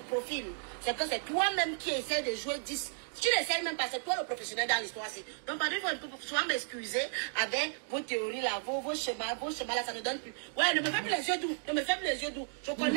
c'est que c'est toi-même qui essaie de jouer 10. Tu n'essayes même pas, c'est toi le professionnel dans l'histoire. Donc, pardon, il faut souvent m'excuser avec vos théories là, vos schémas là, ça ne donne plus. Ouais, ne me fais plus les yeux doux, ne me fais plus les yeux doux. Je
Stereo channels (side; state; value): left; silent; digital silence